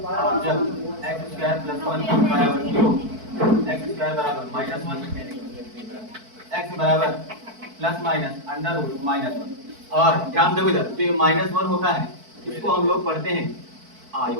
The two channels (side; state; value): left; late; 4.5 ms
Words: जब x स्क्वायर प्लस 1 बराबर 0, x स्क्वायर बराबर माइनस 1, x बराबर plus minus under root minus 1। और ध्यान दो इधर, तो ये माइनस 1 होता है, इसको हम लोग पढ़ते हैं